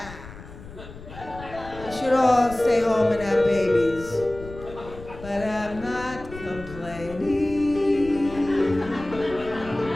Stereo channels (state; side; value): noise; left; rumble, 15 dB below the sound